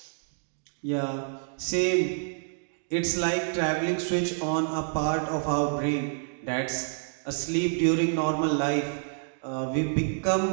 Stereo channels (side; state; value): left; silent; digital silence